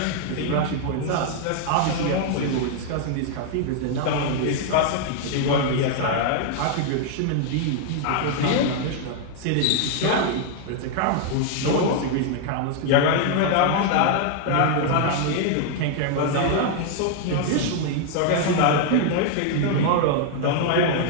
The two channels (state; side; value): different; both; correlation 0.00